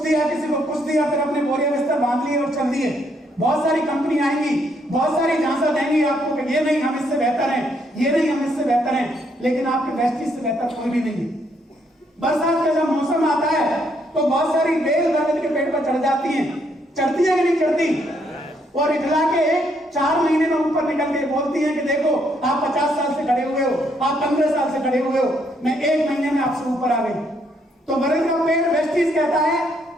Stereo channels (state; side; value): normal; both; correlation 0.72